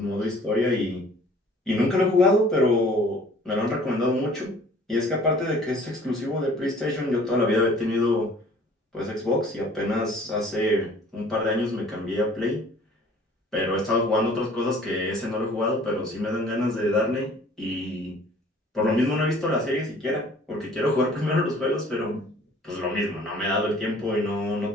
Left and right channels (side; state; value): both; normal; correlation 0.52